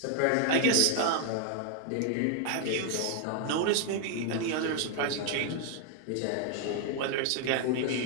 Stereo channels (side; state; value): both; different; correlation 0.00